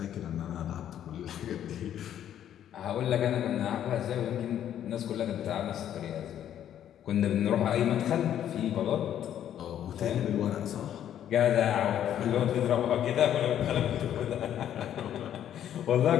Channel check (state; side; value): quieter; right; 10.5 dB